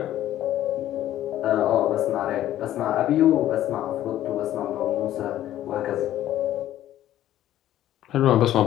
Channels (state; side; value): quieter; right; 12.9 dB